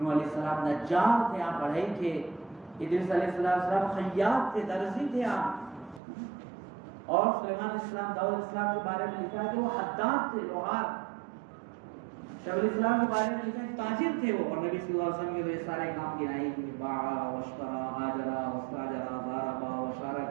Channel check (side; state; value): left; drops out; at 6.0 s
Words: علیہ السلام نجار تھے، آپ بڑھئی تھے، ادریس علیہ السلام خیاط تھے، درزی تھے آپ، اور سلیمان علیہ السلام، داؤد علیہ السلام کے بارے میں لکھا ہے کہ وہ حداد تھے، لوہار. شعیب علیہ السلام کے بارے میں لکھا ہے تاجر تھے وہ، اور نبی صلی اللہ علیہ وسلم کے یہ سارے کام گنائے کہ باع واشترى هاجر واستاجر ضرب